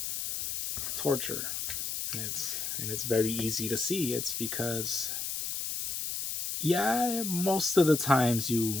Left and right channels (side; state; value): left; noise; hiss, 3 dB below the sound